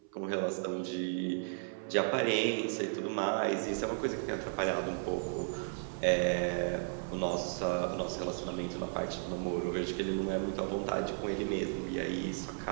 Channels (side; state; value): left; silent; 55 dB below the other